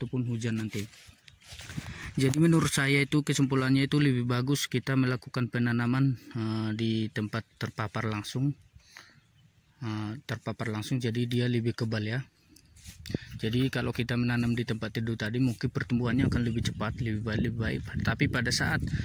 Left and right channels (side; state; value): both; identical; correlation 1.00